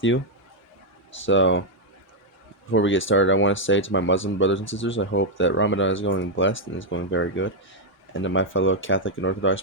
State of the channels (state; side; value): normal; both; correlation -0.01